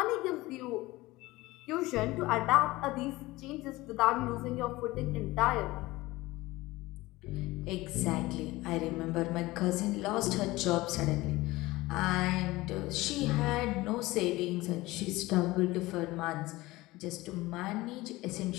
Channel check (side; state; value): right; quieter; 19.6 dB